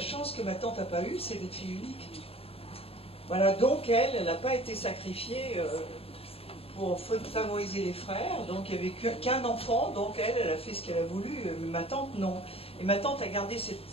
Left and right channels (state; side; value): late; right; 0.28 ms